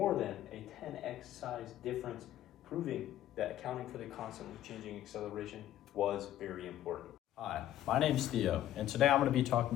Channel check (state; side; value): quieter; right; 12.6 dB